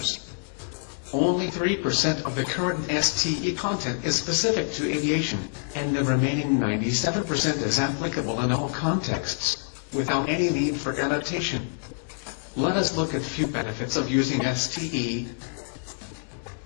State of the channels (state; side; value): silent; right; 60 dB below the other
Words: Only 3% of the current STE content is specific to aviation, and the remaining 97% is applicable in all contexts, without any need for adaptation. Let us look at few benefits of using STE.